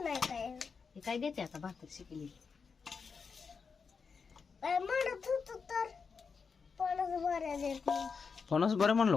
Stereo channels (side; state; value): right; quieter; 5.5 dB